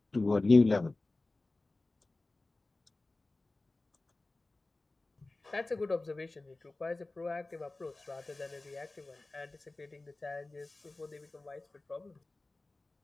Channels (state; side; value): quieter; right; 3.1 dB